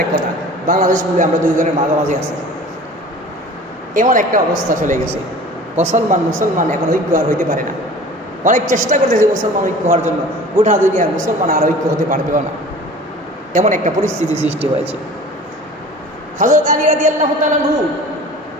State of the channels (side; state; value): both; normal; correlation 0.43